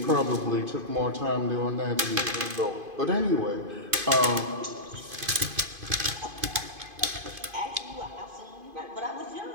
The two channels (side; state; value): left; late; 2.5 ms